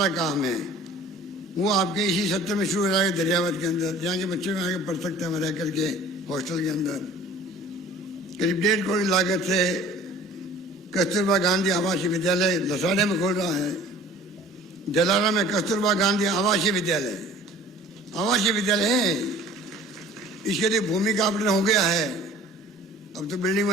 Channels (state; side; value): normal; both; correlation 0.48